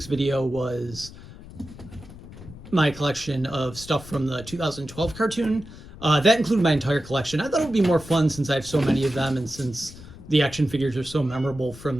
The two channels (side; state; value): left; noise; rumble, 17 dB below the sound